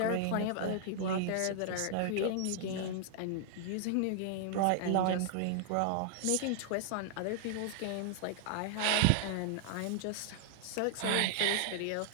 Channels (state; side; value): different; both; correlation 0.00